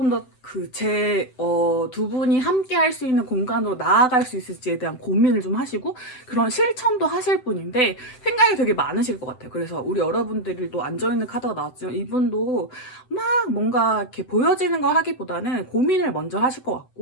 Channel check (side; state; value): right; late; 7.8 ms